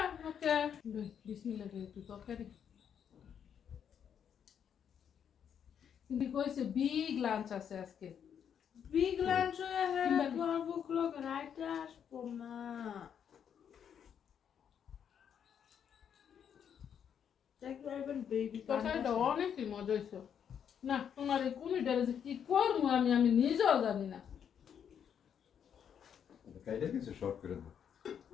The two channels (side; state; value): right; quieter; 8.3 dB